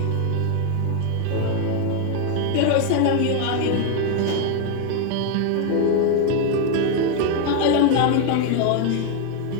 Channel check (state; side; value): different; both; correlation 0.01